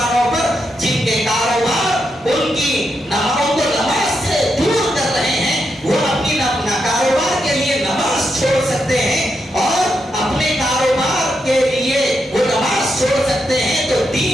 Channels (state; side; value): normal; both; correlation 0.83